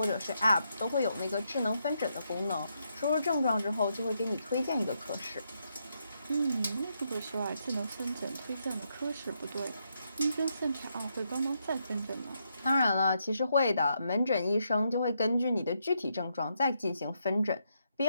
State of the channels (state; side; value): inverted; both; correlation -0.79